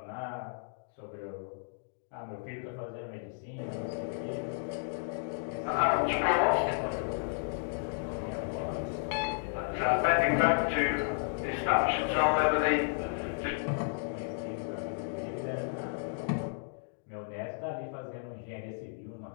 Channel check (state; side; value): silent; right; digital silence